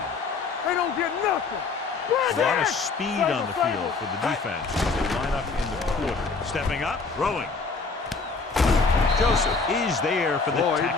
They don't get nothing. A lot of speed on the field for the defense as they line up in the quarter. Stepping up, throwing. Joseph is there for the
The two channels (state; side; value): quieter; right; 4.4 dB